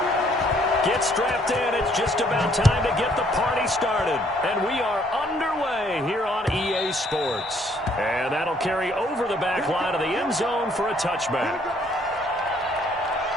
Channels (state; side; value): normal; both; correlation 0.65